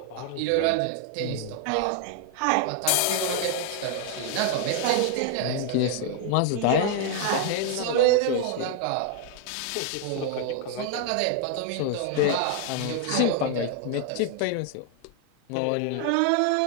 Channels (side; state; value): both; different; correlation 0.00